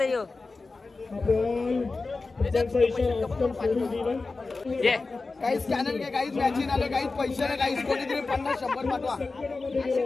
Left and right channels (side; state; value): right; quieter; 3.8 dB